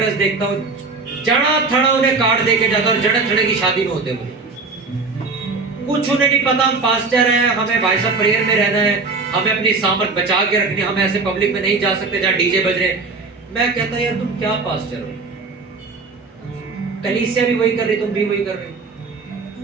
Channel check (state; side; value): quieter; left; 4.0 dB